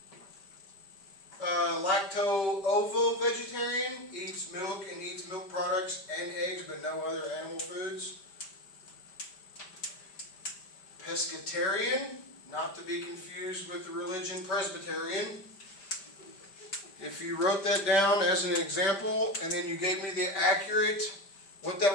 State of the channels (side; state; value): right; late; 5.1 ms